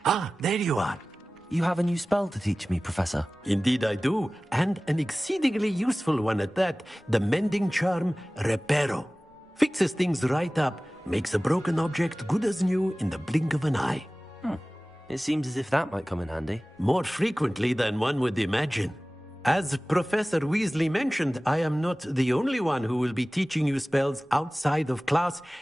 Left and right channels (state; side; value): normal; both; correlation 0.98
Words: Ah, there you are. You have a new spell to teach me, Professor. Indeed I do, and an exceedingly useful one at that. The mending charm, Reparo. Fixes things right up, makes a broken object good as new in the blink of an eye. It seems as if that might come in handy. More frequently than one would imagine. As Professor Weasley mentioned, I am not the only one who will be teaching you spells outside of class